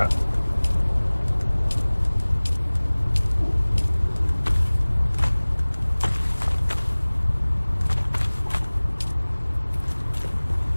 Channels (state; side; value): inverted; both; correlation -1.00